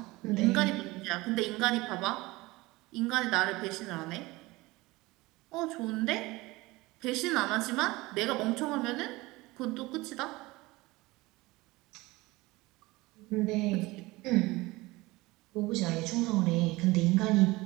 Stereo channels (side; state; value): left; quieter; 21.1 dB